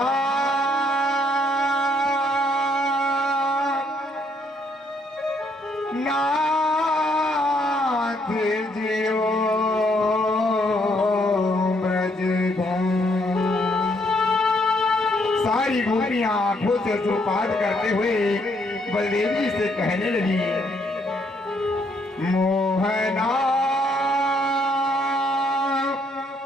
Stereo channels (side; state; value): both; normal; correlation 0.71